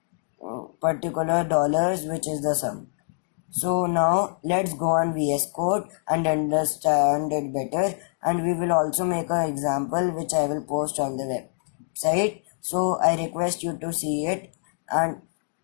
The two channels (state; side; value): silent; right; digital silence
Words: particular dollars, which is the sum. So now let's go on VS Code and understand it better, and we will also make an example which I will post on the website. So I request you to see it and